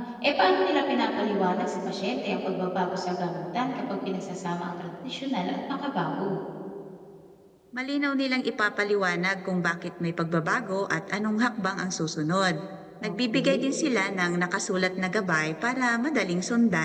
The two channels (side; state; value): both; identical; correlation 1.00